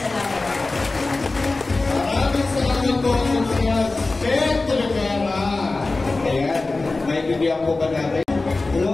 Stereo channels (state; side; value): quieter; right; 3.4 dB